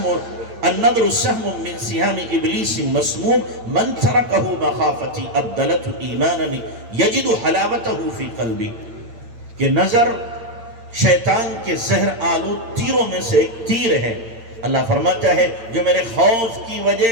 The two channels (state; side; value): late; left; 8.8 ms